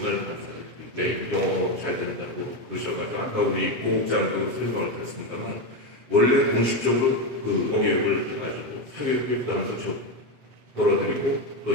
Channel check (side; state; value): left; late; 7.9 ms